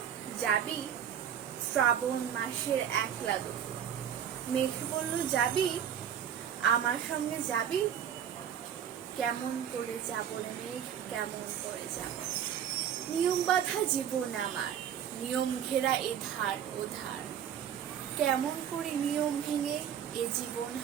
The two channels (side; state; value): left; quieter; 9.1 dB